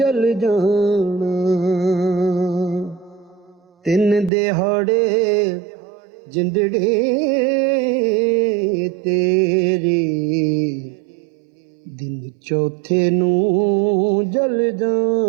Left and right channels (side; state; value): left; drops out; at 4.3 s